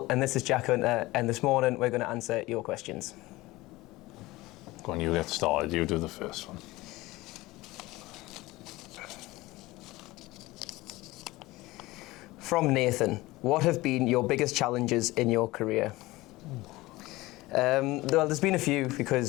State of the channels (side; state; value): right; quieter; 19.6 dB